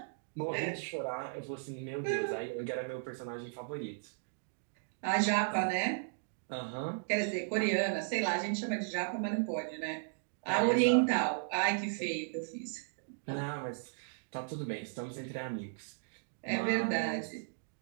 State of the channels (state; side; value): silent; left; digital silence